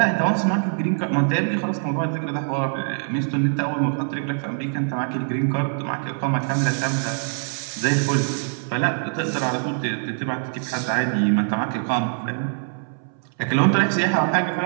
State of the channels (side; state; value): left; silent; 63 dB below the other